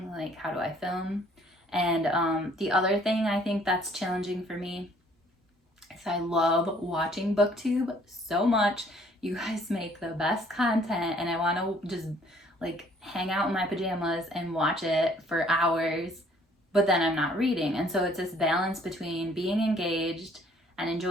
like how do I film? And the other thing I think that's challenging for me is I love watching Booktube so much. You guys make the best content, and I want to just like hang out in my pajamas and watch it for hours, but then I'm not reading. And so it's this balance between being engaged and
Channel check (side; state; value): both; normal; correlation 0.60